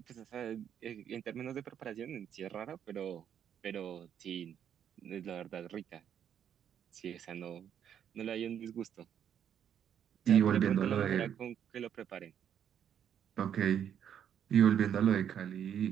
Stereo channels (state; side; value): quieter; left; 9.1 dB